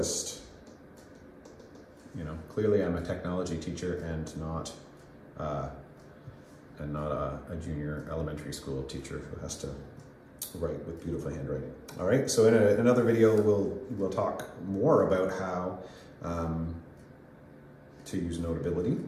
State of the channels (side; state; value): both; identical; correlation 1.00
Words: Clearly I'm a technology teacher and not a junior elementary school teacher who has to write with beautiful handwriting. All right, so in another video we'll talk more about how to use Notability.